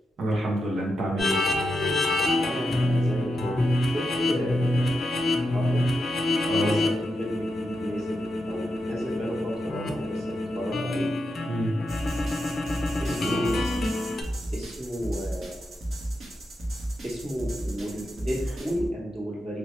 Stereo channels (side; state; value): both; normal; correlation 0.87